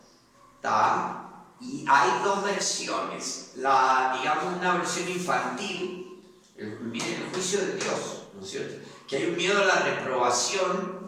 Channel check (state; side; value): identical; both; correlation 1.00